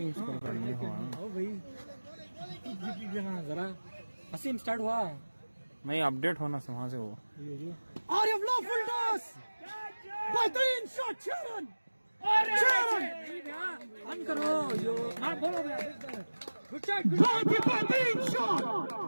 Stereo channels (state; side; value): inverted; both; correlation -1.00